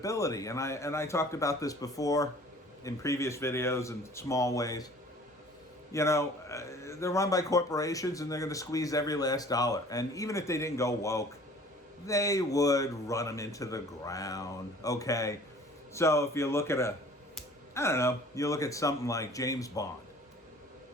and I talked about this before in previous videos in small ways. You know, they're run by corporations, and they're going to squeeze every last dollar. And even if they didn't go woke, they would run them into the ground, okay? So if you look at you look at something like James Bond.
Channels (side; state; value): both; normal; correlation 0.49